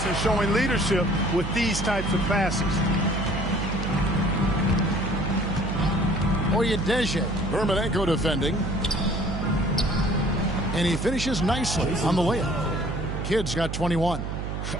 showing leadership with these types of passes. Oyedeji. Dermanenko defending. And he finishes nicely on the layup. Kidd's got 21.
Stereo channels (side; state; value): right; noise; hum, 4 dB below the sound